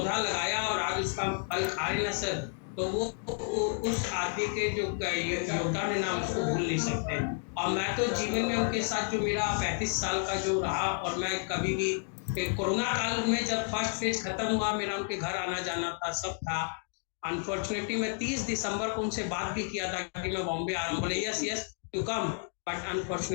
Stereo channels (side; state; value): right; silent; 57 dB below the other